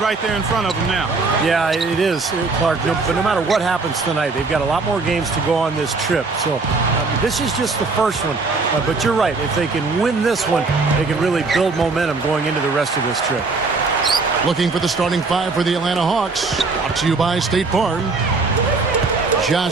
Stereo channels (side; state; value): left; quieter; 4.0 dB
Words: there in front of them now. Yeah, it is, Clark. But no matter what happens tonight, they've got a lot more games to go on this trip. So this is just the first one. But you're right. If they can win this one, they can really build momentum going into the rest of this trip. Looking for the starting five for the Atlanta Hawks. Brought to you by State Farm.